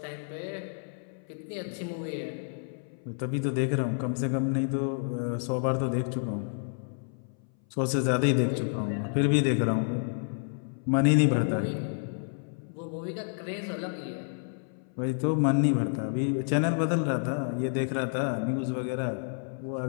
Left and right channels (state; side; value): silent; right; 58 dB below the other